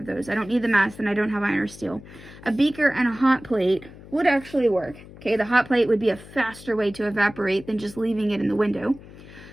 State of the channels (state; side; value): noise; left; hum, 18 dB below the sound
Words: those. I don't need the mass and I don't have iron or steel. A beaker and a hot plate would actually work. Okay, the hot plate would be a faster way to evaporate than just leaving it in the window.